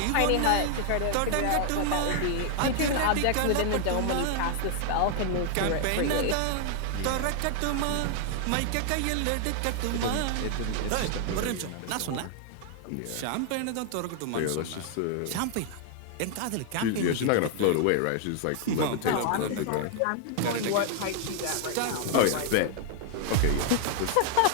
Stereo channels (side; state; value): both; different; correlation 0.00